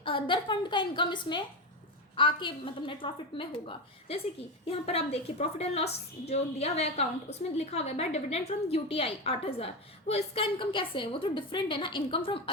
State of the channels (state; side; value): normal; both; correlation 0.16